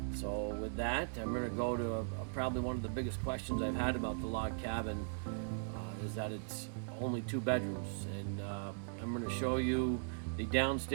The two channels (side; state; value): left; silent; 52 dB below the other